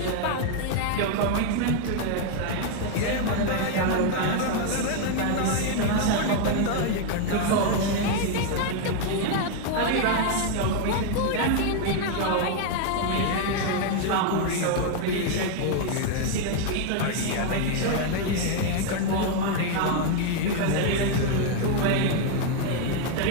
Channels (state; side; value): different; both; correlation 0.00